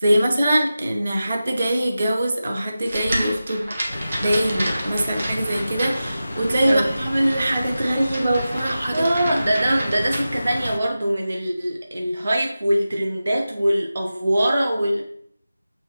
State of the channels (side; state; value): both; inverted; correlation -0.93